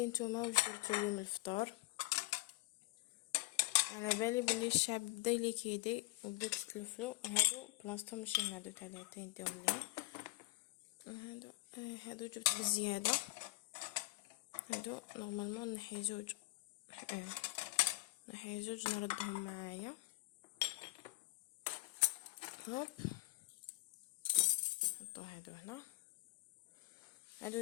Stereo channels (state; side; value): quieter; right; 21.8 dB